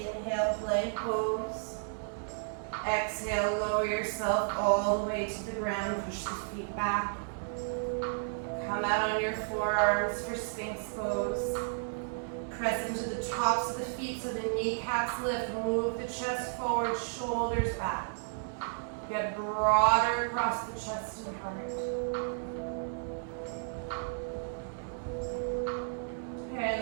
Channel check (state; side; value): silent; left; 55 dB below the other